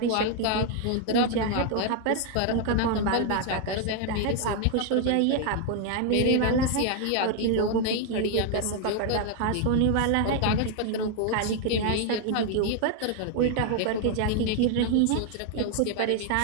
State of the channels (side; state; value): both; different; correlation 0.00